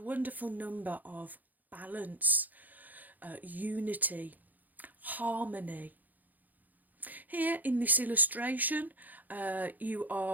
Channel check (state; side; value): late; left; 0.083 ms